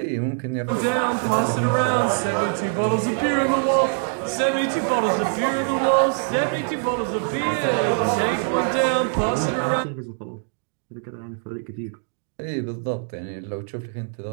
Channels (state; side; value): silent; left; 63 dB below the other